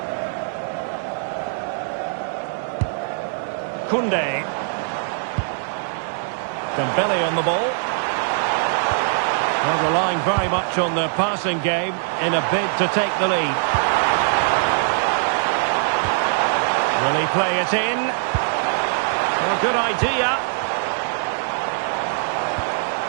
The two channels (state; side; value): silent; left; digital silence